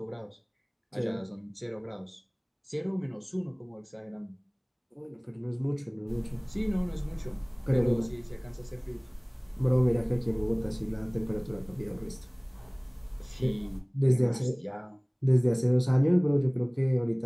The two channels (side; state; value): both; identical; correlation 1.00